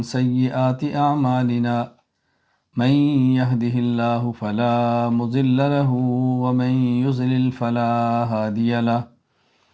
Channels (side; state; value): both; identical; correlation 1.00